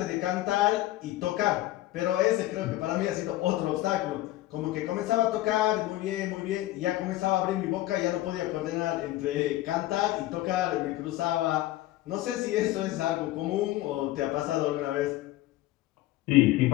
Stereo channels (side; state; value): right; quieter; 16.1 dB